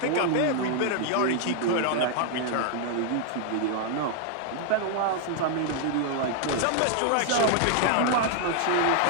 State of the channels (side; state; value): both; different; correlation 0.00